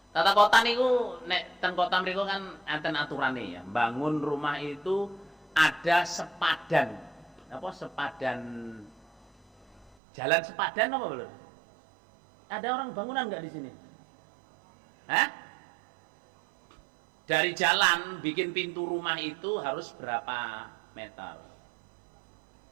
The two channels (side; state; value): left; drops out; at 10.0 s